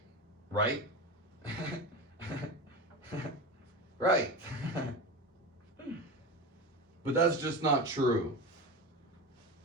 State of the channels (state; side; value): normal; both; correlation 0.25